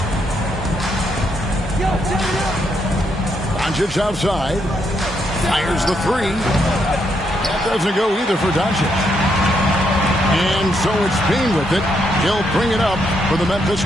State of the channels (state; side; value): normal; both; correlation 0.77